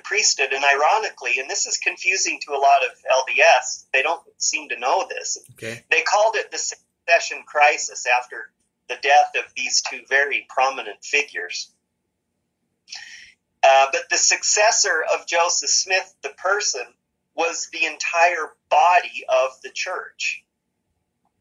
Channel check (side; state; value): both; identical; correlation 1.00